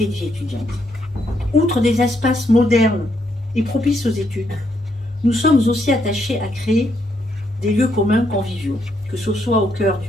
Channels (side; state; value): both; normal; correlation 0.76